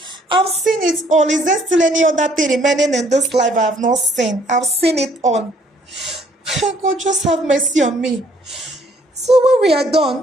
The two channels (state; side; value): normal; both; correlation 0.63